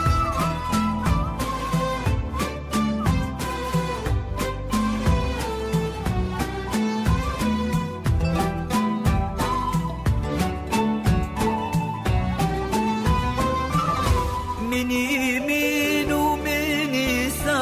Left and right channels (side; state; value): both; identical; correlation 1.00